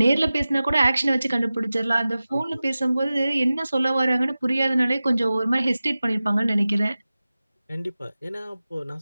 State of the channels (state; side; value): inverted; both; correlation -0.96